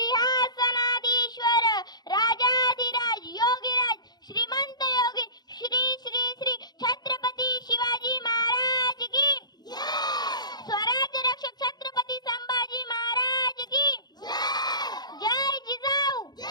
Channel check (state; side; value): late; right; 0.20 ms